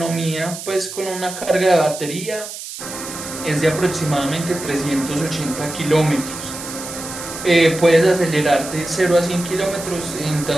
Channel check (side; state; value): right; noise; hiss, 10 dB below the sound